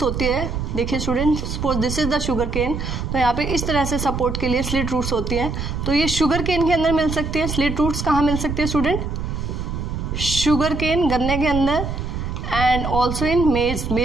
होती है. देखिए student, suppose this is the sugarcane, तो यहाँ पे इस तरह से सपोर्ट के लिए स्लिट रूट्स होती हैं. तो ये शुगर केन के अंदर मिल सकती है. स्लिट रूट्स कहाँ मिल सकती है स्टूडेंट, शुगर केन, गन्ने के अंदर, एंड ऑल्सो इन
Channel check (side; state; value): right; noise; rumble, 4 dB below the sound